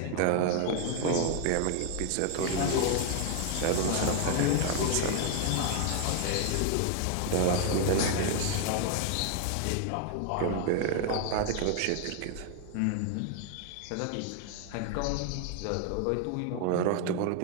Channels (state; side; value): different; both; correlation 0.00